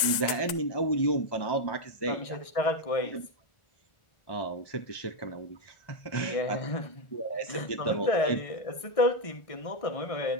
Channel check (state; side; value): late; right; 1.4 ms